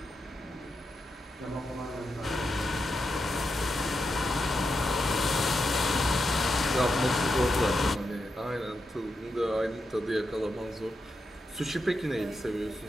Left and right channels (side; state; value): both; normal; correlation 0.86